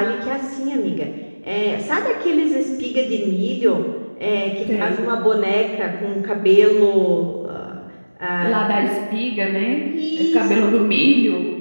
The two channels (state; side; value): inverted; both; correlation -1.00